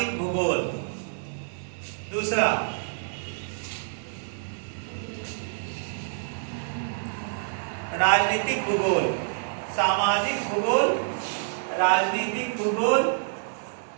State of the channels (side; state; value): left; silent; digital silence